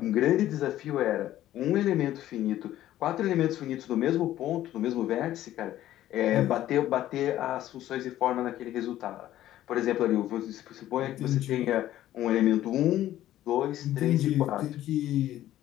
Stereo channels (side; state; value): right; quieter; 13.4 dB